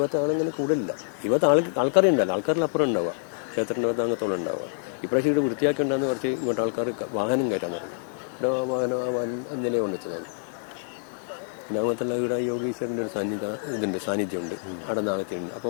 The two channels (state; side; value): silent; right; digital silence